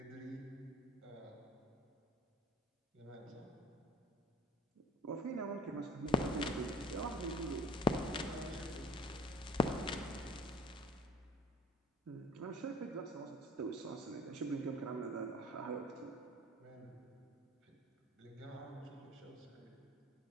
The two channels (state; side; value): normal; both; correlation 0.52